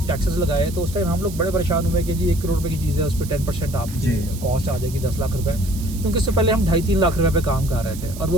टैक्सेस लगाए तो उस टाइम हम लोग बड़े परेशान हुए कि जी 1 करोड़ रुपए की चीज़ है, उस पर 10% आपकी कॉस्ट आ जाएगी 10 लाख रुपए, क्योंकि इससे पहले हम 2.5-3 लाख रुपए पे काम कर रहे थे और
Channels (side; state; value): right; noise; hiss, 15 dB below the sound